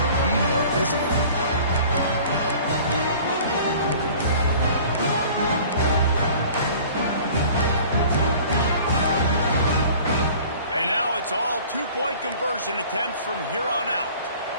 be more physical. And now it's all two-point conversion attempts from here on out.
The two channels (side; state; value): both; inverted; correlation -0.47